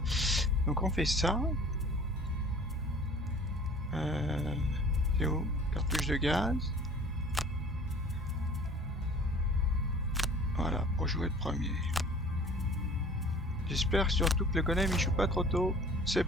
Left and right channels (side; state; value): both; normal; correlation 0.48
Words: Donc on fait ça. C'est où? Cartouche de gaz. Voilà, pour jouer le premier. J'espère surtout que le golem il joue pas trop tôt. C'est